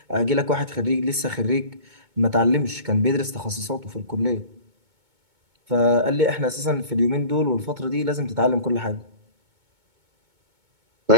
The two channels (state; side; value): late; left; 2.2 ms